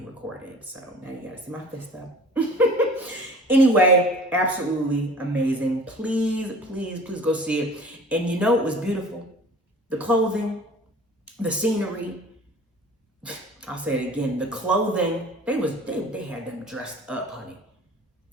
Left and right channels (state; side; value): normal; both; correlation 0.45